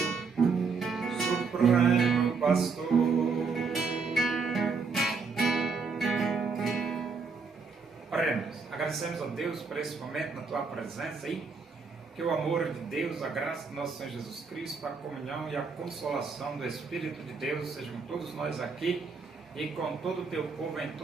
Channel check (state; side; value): quieter; left; 4.9 dB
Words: Supremo Pastor. Oremos. Agradecemos a Deus por esse momento na tua presença aí. Que o amor de Deus, a graça do nosso Senhor Jesus Cristo, a comunhão e a consolação do Espírito de Deus sejam todos nós aqui e com todo o teu povo em